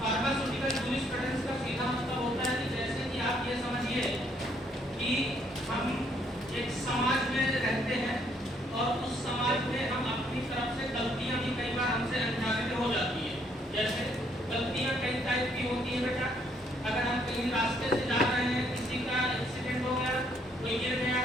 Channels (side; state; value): both; normal; correlation 0.69